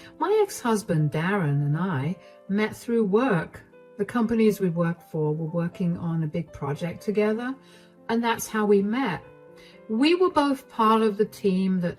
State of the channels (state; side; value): identical; both; correlation 1.00